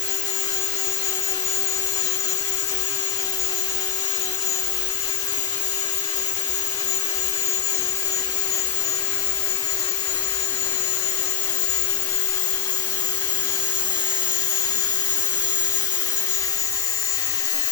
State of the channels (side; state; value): right; quieter; 9.6 dB